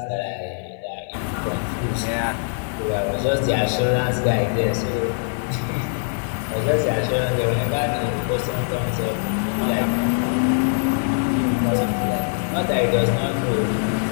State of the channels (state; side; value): silent; right; digital silence